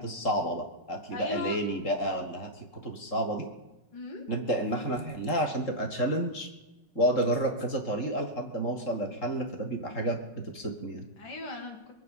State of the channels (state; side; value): late; right; 5.4 ms